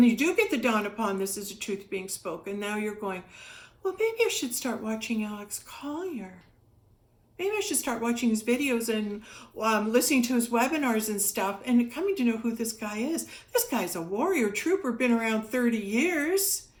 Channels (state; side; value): identical; both; correlation 1.00